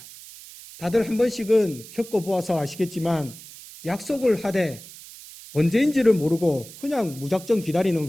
다들 한 번씩은 겪어보아서 아시겠지만 약속을 하되 언제인지를 모르고 그냥 무작정 기다리는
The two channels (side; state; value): right; noise; hiss, 17 dB below the sound